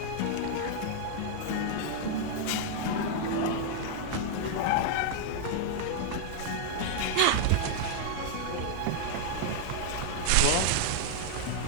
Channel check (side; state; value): both; different; correlation -0.01